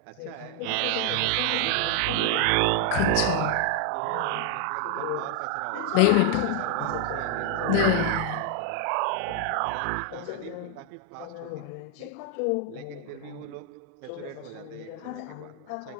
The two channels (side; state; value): both; different; correlation 0.00